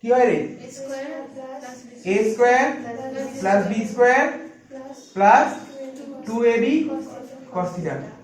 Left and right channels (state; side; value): identical; both; correlation 1.00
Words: হয় রে, a square plus b square plus 2ab cos theta.